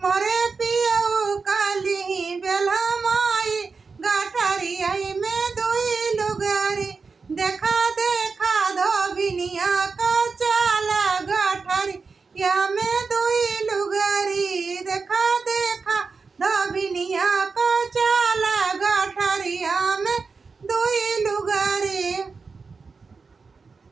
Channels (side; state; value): left; quieter; 4.7 dB